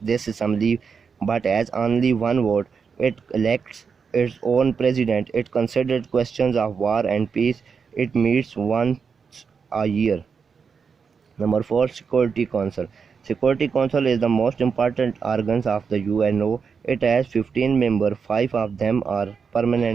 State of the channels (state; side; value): quieter; left; 5.9 dB